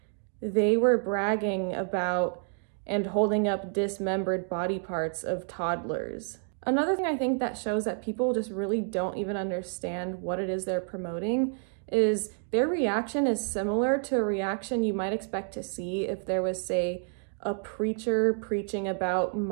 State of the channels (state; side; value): silent; left; 55 dB below the other